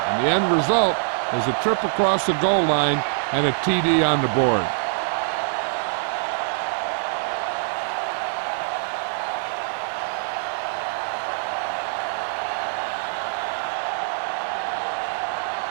the end result is a trip across the goal line and a TD on the board.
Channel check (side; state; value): left; silent; digital silence